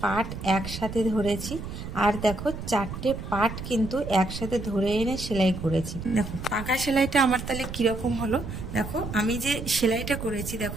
পার্ট একসাথে ধরেছি, আর দেখো চারটে পার্ট কিন্তু একসাথে ধরে এনে সেলাই করেছি। দেখো পাকা সেলাইটা আমার তাহলে কিরকম হলো। দেখো আমি যে সেলাইটা করেছি,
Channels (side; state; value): right; noise; rumble, 8 dB below the sound